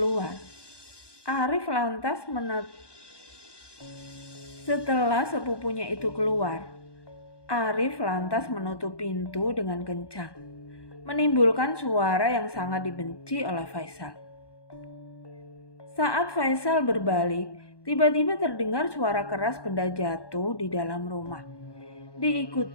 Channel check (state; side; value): late; right; 1.2 ms